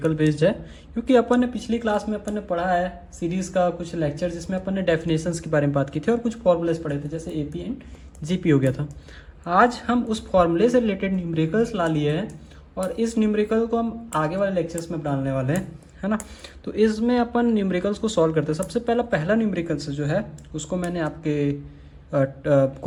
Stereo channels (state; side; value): identical; both; correlation 1.00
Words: बेस्ड है, क्योंकि अपन ने पिछली क्लास में अपन ने पढ़ा है सीरीज़ का कुछ लेक्चर जिसमें अपन ने डेफिनेशंस के बारे में बात की थी और कुछ फॉर्मूलेस पढ़े थे, जैसे एपी एंड जीपी हो गया था। आज हम उस फॉर्मूले से रिलेटेड न्यूमेरिकल्स ला लिए हैं और इस न्यूमेरिकल को हम आगे वाले लेक्चर्स में डालने वाले हैं, है ना। तो इसमें अपन न्यूमेरिकल्स को सॉल्व करते हैं। सबसे पहला न्यूमेरिकल्स जो है उसको मैंने आपके